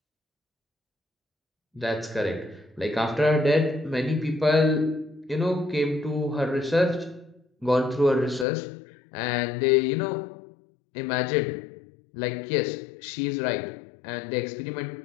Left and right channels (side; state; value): right; drops out; at 8.5 s